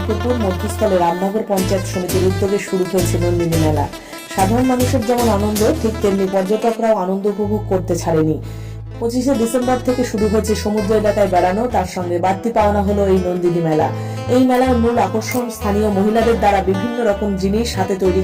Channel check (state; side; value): identical; both; correlation 1.00